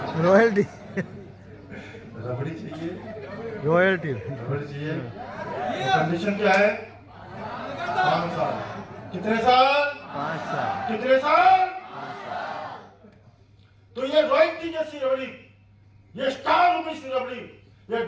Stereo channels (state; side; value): identical; both; correlation 1.00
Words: रॉयल्टी, रबड़ी चाहिए, रॉयल्टी, रबड़ी चाहिए। कंडीशन क्या है? 5 साल। कितने साल? 5 साल। कितने साल? तो ये रॉयल्टी जैसी रबड़ी, ये स्टार मूवी सी रबड़ी, ये